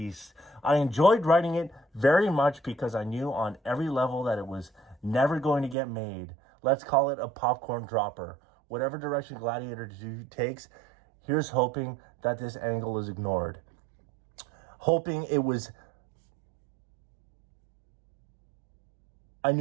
I enjoyed writing it very much because I knew on every level that it was never going to get made. Let's call it a popcorn dropper. Whatever direction Gladiator 2 takes, here's hoping that this angle is ignored. Hoping it was... I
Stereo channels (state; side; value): drops out; left; at 5.8 s